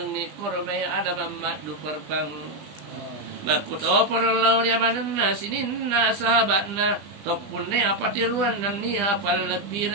korome ada mamat du perbang. Makuto porlau riamanna sininna sahabatna Topune apa tiruan dan ni apa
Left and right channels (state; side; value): late; left; 20 ms